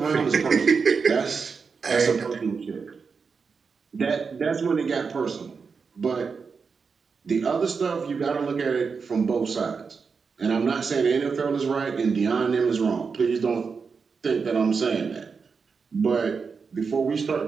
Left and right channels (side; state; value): left; quieter; 5.3 dB